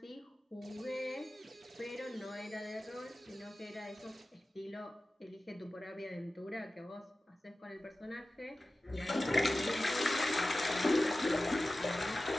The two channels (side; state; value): both; normal; correlation 0.96